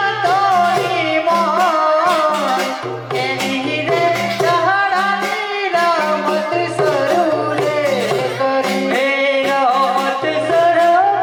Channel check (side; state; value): both; identical; correlation 1.00